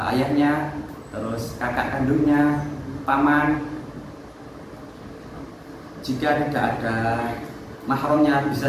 ayahnya, terus kakak kandungnya, paman. Jika tidak ada mahramnya,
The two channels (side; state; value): both; identical; correlation 1.00